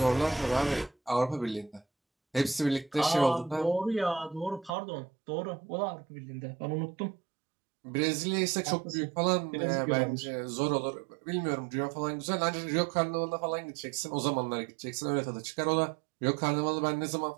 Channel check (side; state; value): left; drops out; at 4.7 s